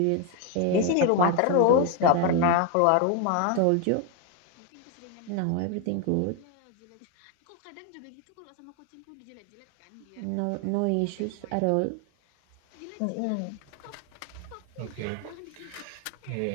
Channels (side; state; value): both; different; correlation 0.01